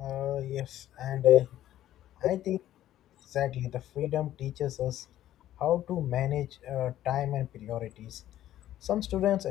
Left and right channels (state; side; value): quieter; right; 12.9 dB